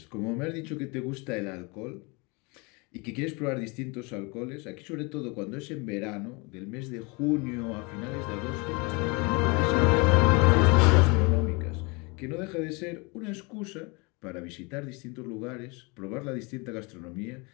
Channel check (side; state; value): right; quieter; 28.9 dB